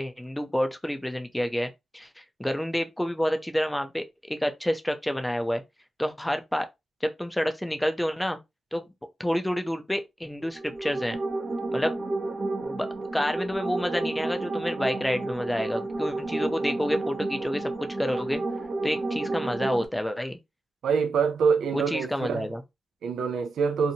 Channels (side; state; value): both; normal; correlation 0.93